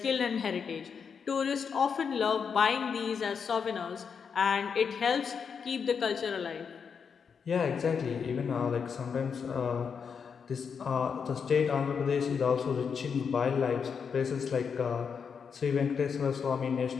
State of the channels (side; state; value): right; quieter; 6.4 dB